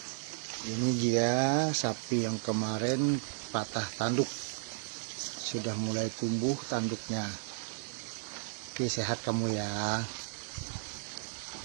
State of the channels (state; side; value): silent; left; digital silence